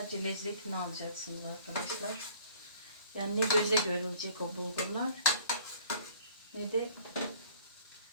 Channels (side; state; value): both; inverted; correlation -0.53